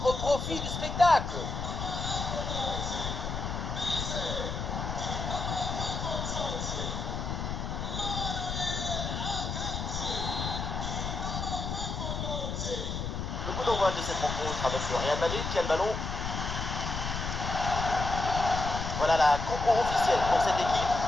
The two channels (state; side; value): noise; left; rumble, 3 dB below the sound